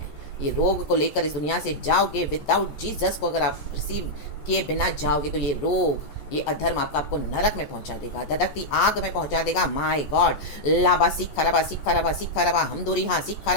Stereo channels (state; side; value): late; right; 14 ms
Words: ये रोग को लेकर इस दुनिया से जाओगे, विदाउट जीसस को अगर आप रिसीव किए बिना जाओगे, तो ये रोग, ये अधर्म आपको नरक में पहुंचा देगा, धधकती आग में पहुंचा देगा। My God. लावा सिखा रवा सिखा रवा सिखा रवा। हम दूरी हाँ सिखा